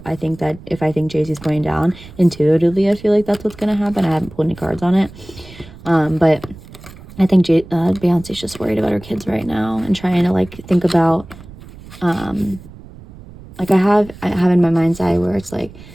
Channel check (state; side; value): noise; right; rumble, 18 dB below the sound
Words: I think Jay-Z's going down. Intuitively, I feel like that's what's gonna happen. I haven't pulled any cards on it, but I think Beyonce's just worried about her kids right now and trying to like think about, like I have in my mind's eye where it's like,